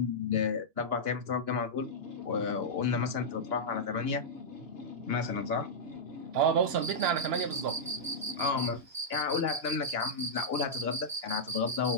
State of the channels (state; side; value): late; left; 2.9 ms